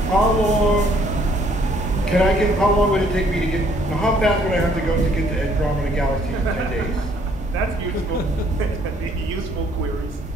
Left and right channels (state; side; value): normal; both; correlation 0.64